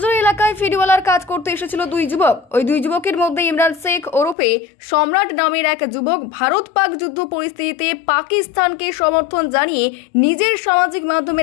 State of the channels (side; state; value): right; drops out; at 4.4 s